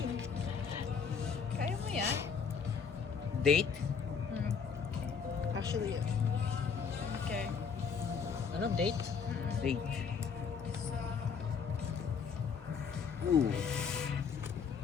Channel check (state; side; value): quieter; right; 6.2 dB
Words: Kaya mo yan? Date? Actually, yeah. Okay. Ano, date? Date. Ooh.